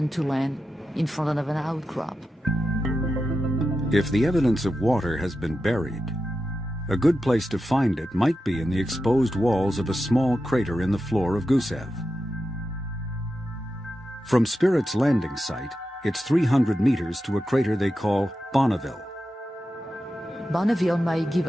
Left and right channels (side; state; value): both; normal; correlation 0.90